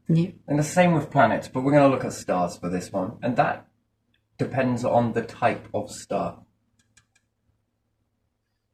Yeah. And the same with planets, but we're going to look at stars for this one, and that depends on the type of star.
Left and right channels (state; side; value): identical; both; correlation 1.00